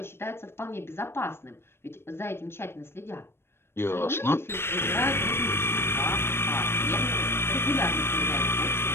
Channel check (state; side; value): late; right; 0.12 ms